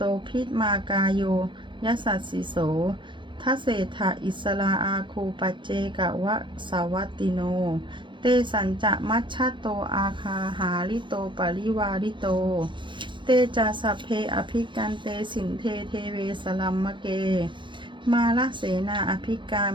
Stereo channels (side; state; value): left; late; 0.23 ms